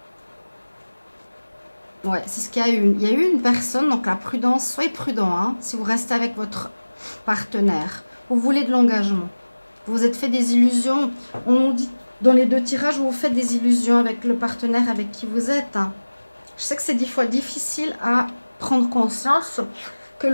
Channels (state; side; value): inverted; both; correlation -1.00